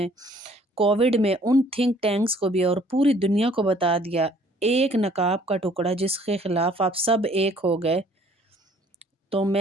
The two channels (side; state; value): both; normal; correlation 0.58